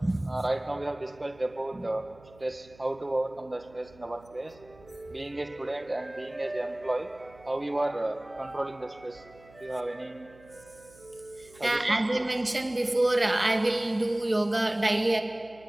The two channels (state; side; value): noise; right; hum, 24 dB below the sound